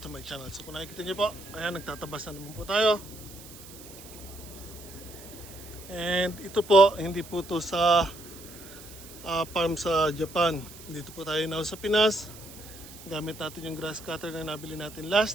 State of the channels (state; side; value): noise; right; hiss, 17 dB below the sound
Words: to my channel. So kung nakikita niyo po, ayan, nagtatabas na naman po tayo. And ito po, hindi po to sa farm sa Japan. Dito po tayo now sa Pinas. Gamit natin yung grass cutter na nabili natin